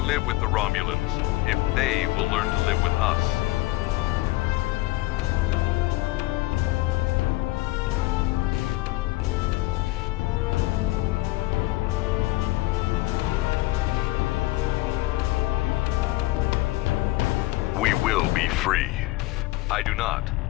with the Romulans if they will learn to live with us. We will be free. I do not.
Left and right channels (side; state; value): right; quieter; 19.7 dB